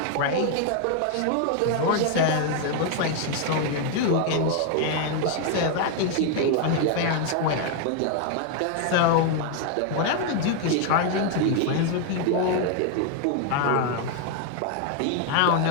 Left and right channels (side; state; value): both; different; correlation 0.00